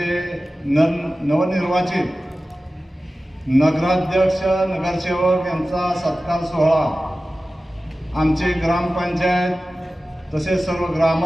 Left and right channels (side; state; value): both; normal; correlation 0.96